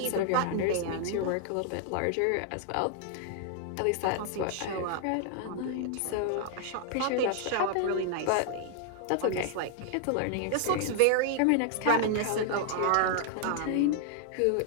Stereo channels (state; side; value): different; both; correlation 0.00